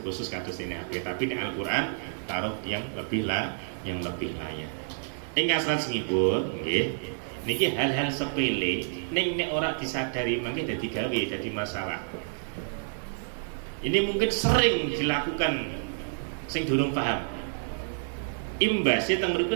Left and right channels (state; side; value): silent; left; digital silence